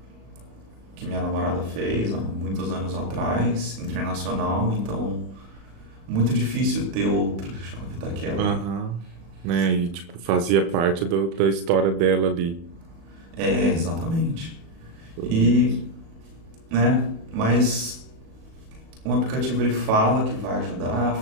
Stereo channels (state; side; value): late; left; 36 ms